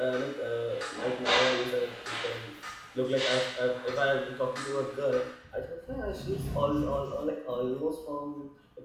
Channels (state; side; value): identical; both; correlation 1.00